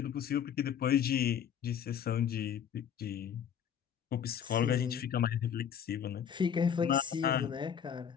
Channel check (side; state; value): right; quieter; 8.5 dB